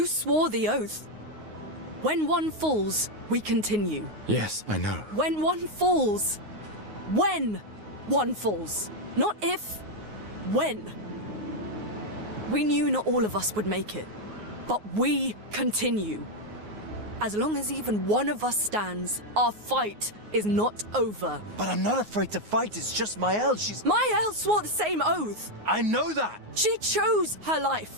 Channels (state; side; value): late; left; 9.5 ms